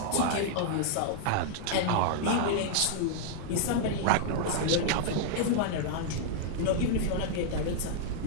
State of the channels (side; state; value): both; different; correlation -0.01